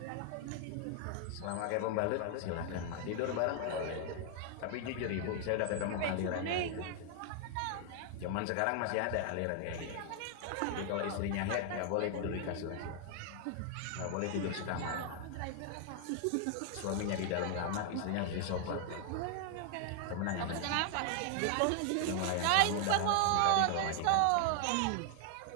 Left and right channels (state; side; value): different; both; correlation 0.00